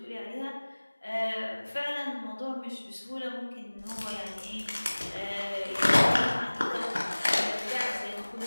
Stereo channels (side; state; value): both; inverted; correlation -1.00